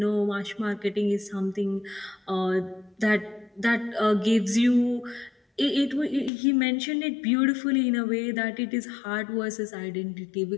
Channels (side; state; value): right; drops out; at 6.3 s